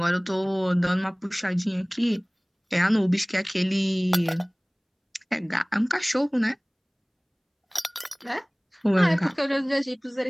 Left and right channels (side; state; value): both; identical; correlation 1.00